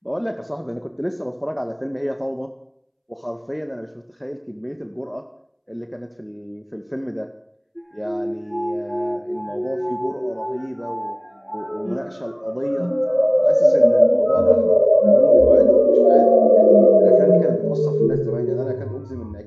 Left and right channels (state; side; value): identical; both; correlation 1.00